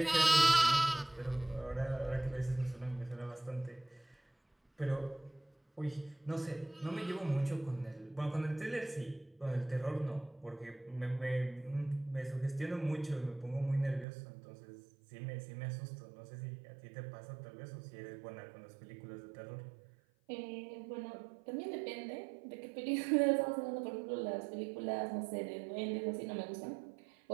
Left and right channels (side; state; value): left; drops out; at 14.1 s